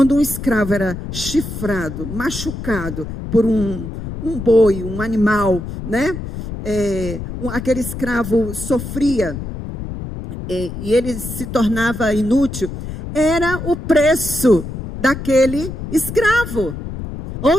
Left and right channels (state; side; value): noise; left; rumble, 8 dB below the sound